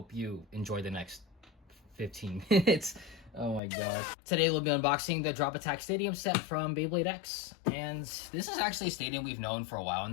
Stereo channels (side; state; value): right; drops out; at 3.6 s